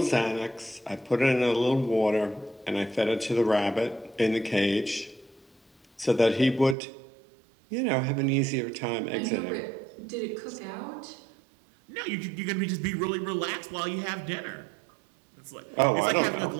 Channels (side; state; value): left; drops out; at 6.8 s